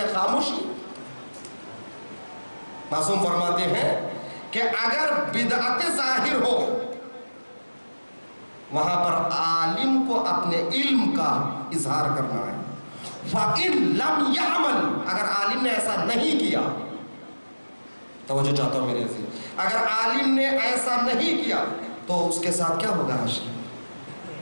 خاموشی۔ معصوم فرماتے ہیں کہ اگر بدعت ظاہر ہو وہاں پر عالم کو اپنے علم کا اظہار کرنا ہے۔ فَإِن لَمْ يَعْمَلْ، اگر عالم نے ایسا نہیں کیا، توجہ چاہتا ہوں میرے عزیز، اگر عالم نے ایسا نہیں کیا تو اس کے ساتھ کیا ہوگا حشر؟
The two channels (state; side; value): inverted; both; correlation -1.00